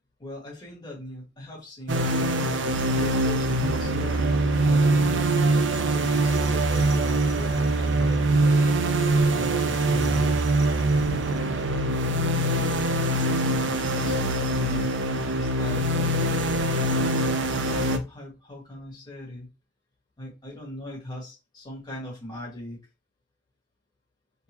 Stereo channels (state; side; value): normal; both; correlation 0.43